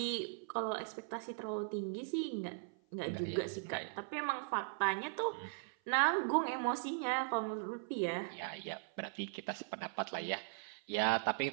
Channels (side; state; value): left; silent; 52 dB below the other